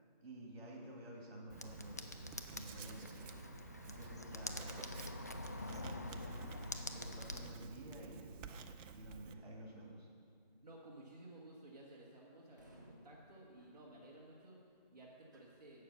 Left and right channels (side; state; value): both; inverted; correlation -0.47